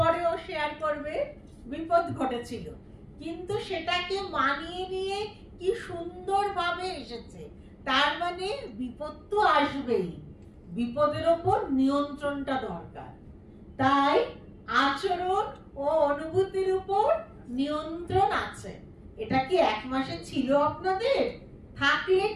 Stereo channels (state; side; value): identical; both; correlation 1.00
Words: শেয়ার করবে বিপদ ঘটেছিল, কিন্তু সেটাকে মানিয়ে নিয়ে কি সুন্দরভাবে এসেছে। তার মানে বিপদ তো আসবেই, বিপদের ওপর নিয়ন্ত্রণটা দরকার। তাই আচরণ ও অনুভূতির উপর নিয়ন্ত্রণ আছে। এটা কি এক মাসে ছিল আপনাদের? থাকলে